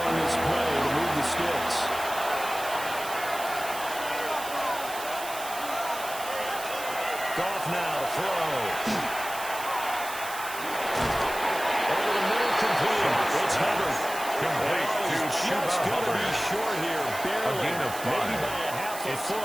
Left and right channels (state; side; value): noise; right; hiss, 11 dB below the sound